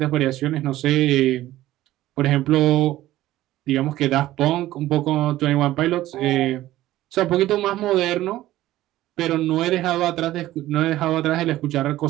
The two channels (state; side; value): quieter; left; 15.2 dB